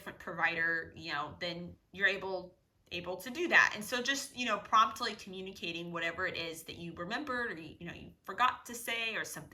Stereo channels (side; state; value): both; identical; correlation 1.00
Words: provider, then you're able to do that. And so just, promptly communicating whatever it is that you remembered, or, you forgot to say, or